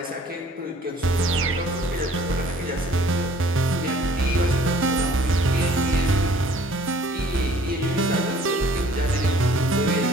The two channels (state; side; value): normal; both; correlation 0.56